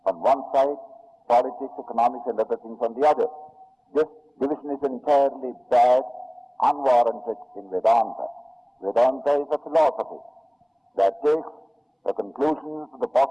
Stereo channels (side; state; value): both; identical; correlation 1.00